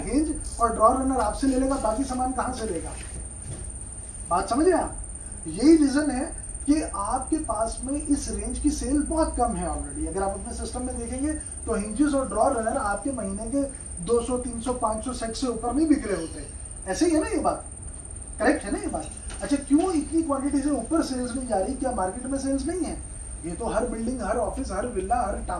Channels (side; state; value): both; identical; correlation 1.00